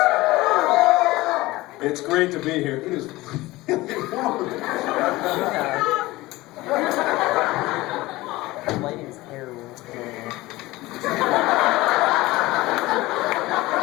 It's great to be here. It is really warm. The lighting's terrible.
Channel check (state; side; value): quieter; right; 19.3 dB